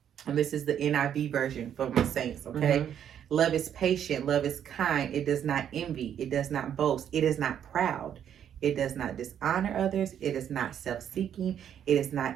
and this is the NIV version for my saints. Okay. Love is patient, love is kind, it does not envy, it does not boast, it is not proud. It does not dishonor others. It is not self-seeking. It is not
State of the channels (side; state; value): left; quieter; 9.4 dB